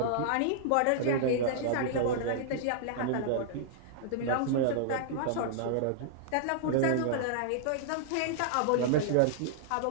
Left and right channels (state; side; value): different; both; correlation -0.01